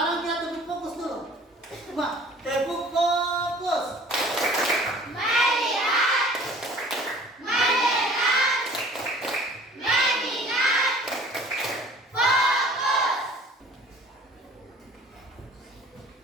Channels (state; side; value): normal; both; correlation 0.49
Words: kita tepuk fokus dulu. Coba tepuk fokus. Melihat, mendengar, mengingat, fokus.